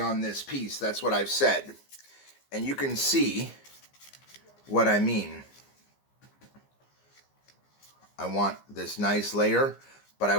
this piece. That's what I've said. And you can see what I mean. I want this nice layer, but I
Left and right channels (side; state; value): right; late; 15 ms